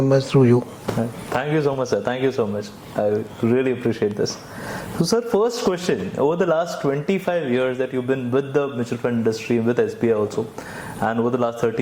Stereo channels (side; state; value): both; identical; correlation 1.00